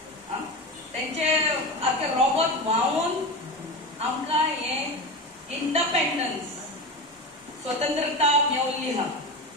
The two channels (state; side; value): normal; both; correlation 0.24